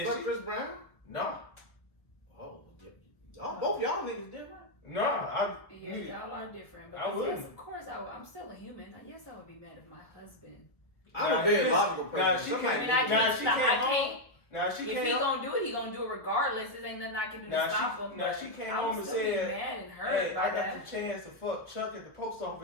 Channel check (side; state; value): right; late; 1.2 ms